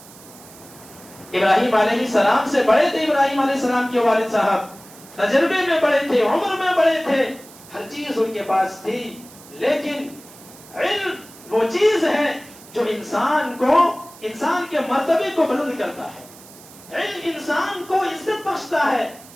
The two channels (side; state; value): right; noise; hiss, 21 dB below the sound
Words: ابراہیم علیہ السلام سے بڑے تھے ابراہیم علیہ السلام کے والد صاحب، تجربے میں بڑے تھے، عمر میں بڑے تھے، ہر چیز ان کے پاس تھی، لیکن علم وہ چیز ہے جو انسان کے مرتبے کو بلند کرتا ہے، علم انسان کو عزت بخشتا ہے،